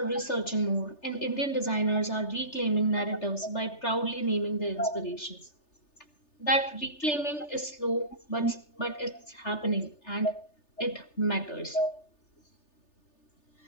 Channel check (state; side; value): late; right; 3.3 ms